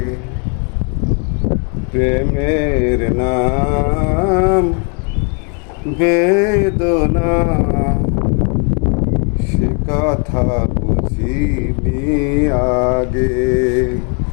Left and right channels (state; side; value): quieter; right; 38.3 dB